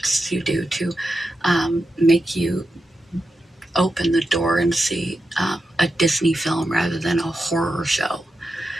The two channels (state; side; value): normal; both; correlation 0.89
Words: you do to make you open the door and see a Disney film rather than a horror show.